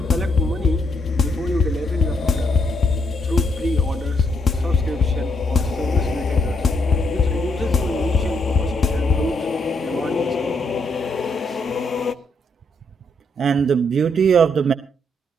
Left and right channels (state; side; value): normal; both; correlation 0.75